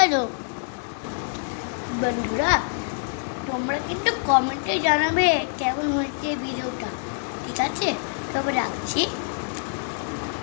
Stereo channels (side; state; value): right; silent; 61 dB below the other